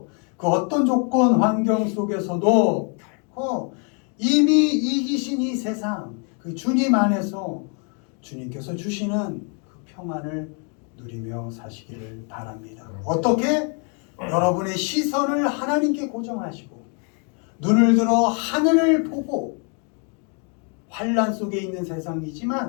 그 어떤 조건 환경 속에서도 결코 이미 이기신 이 세상 그 주님 안에서 주님께서 주시는 그 평안을 누리며 사시기를 바랍니다. 어떻게? 여러분의 시선을 하나님께 고정하시고 눈을 들어 하늘을 보고 환난 속에 있는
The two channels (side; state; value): right; quieter; 38.9 dB